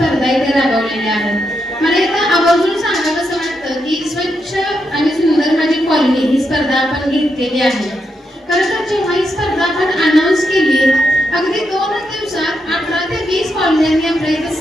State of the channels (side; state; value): both; normal; correlation 0.83